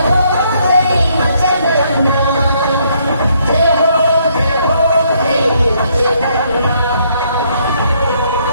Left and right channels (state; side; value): inverted; both; correlation -0.70